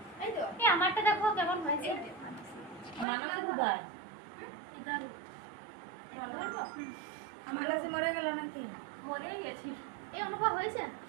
এই তো এই আমারটা দেখো কেমন হয়েছে। মানসের উদয় ইদার মানসে মরে গেল নাকি? মরেই গেছি। এই অনুভব হয়েছে?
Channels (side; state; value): left; drops out; at 3.1 s